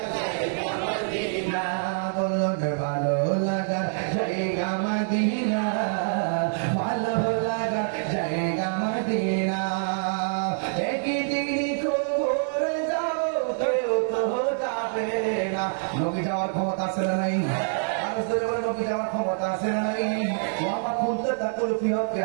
জায়গা মদিনা, বলো ভালো লাগার জায়গা মদিনা, ভালো লাগার জায়গা মদিনা। একদিন কবর যাব কেউ তো যাবে না। নবী যাওয়ার ক্ষমতা আছে না নাই? নবী যাওয়ার ক্ষমতা আছে না নাই? আমার খুলতে তাকুল ফিহকে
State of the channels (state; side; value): silent; left; digital silence